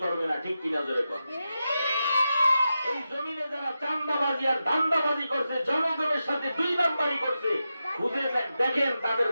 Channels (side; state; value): both; inverted; correlation -0.90